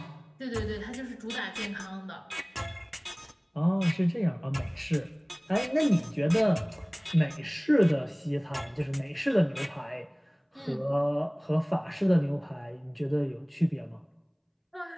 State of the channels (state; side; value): identical; both; correlation 1.00